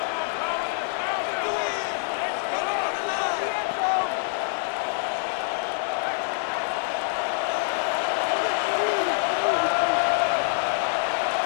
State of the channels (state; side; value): silent; right; 61 dB below the other